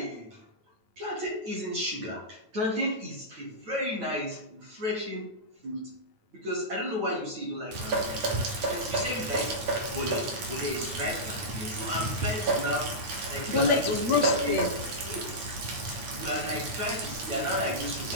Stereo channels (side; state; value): left; late; 9.4 ms